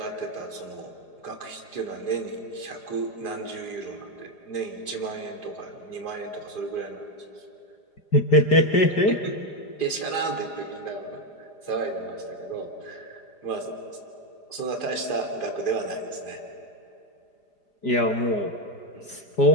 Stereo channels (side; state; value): right; late; 4.9 ms